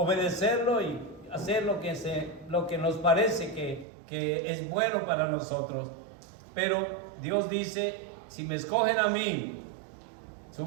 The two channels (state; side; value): drops out; left; at 3.9 s